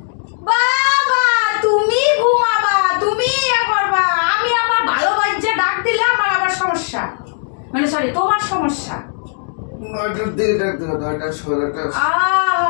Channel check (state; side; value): silent; right; digital silence